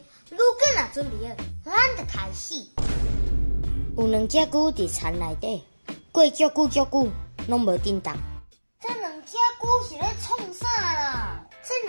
如果若准备好，咱就开始。有两只牛伫田内底，过足久，拢无叮当。这两只牛是咧创啥啦？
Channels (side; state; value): both; inverted; correlation -1.00